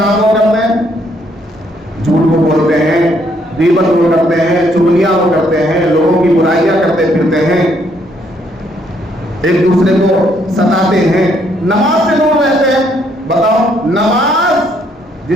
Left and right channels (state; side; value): normal; both; correlation 0.70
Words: وہ کرتے ہیں، جھوٹ کو بولتے ہیں، غیبت وہ کرتے ہیں، چغلیاں وہ کرتے ہیں، لوگوں کی برائیاں کرتے پھرتے ہیں، ایک دوسرے کو ستاتے ہیں، نماز سے دور رہتے ہیں۔ بتاؤ، نماز